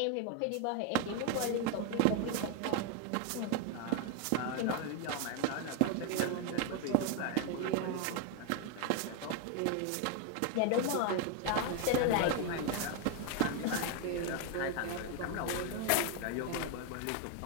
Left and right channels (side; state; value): both; different; correlation 0.01